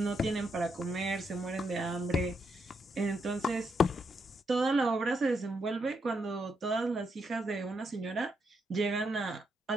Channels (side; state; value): both; normal; correlation 0.79